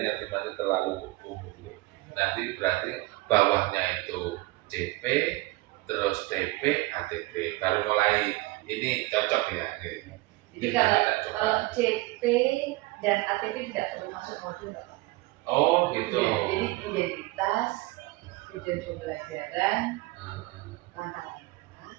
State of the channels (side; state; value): left; quieter; 21.0 dB